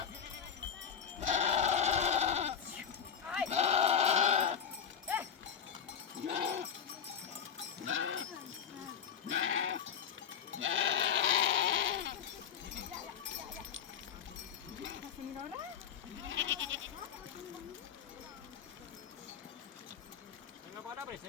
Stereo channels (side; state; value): right; quieter; 7.8 dB